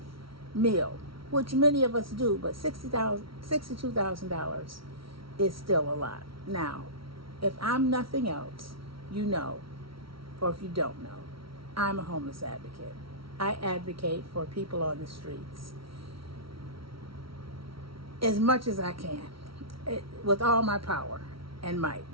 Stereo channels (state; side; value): late; left; 0.75 ms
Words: meal, which many of us do, but $62,000 is still a lot. Now, if I'm nothing else, you know, or if you don't know, I'm a homeless advocate. I advocate for people on the streets as much as I can, with all my power and might.